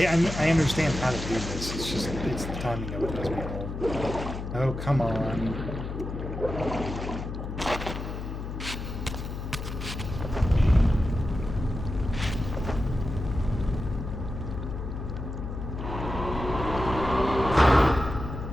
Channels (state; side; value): noise; left; hum, 6 dB below the sound